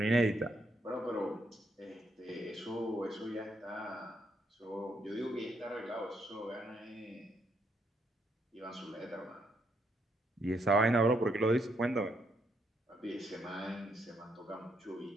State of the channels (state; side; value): normal; both; correlation 0.75